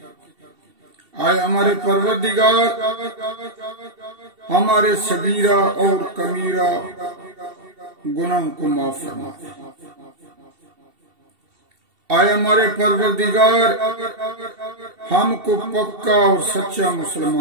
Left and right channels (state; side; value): late; left; 2.7 ms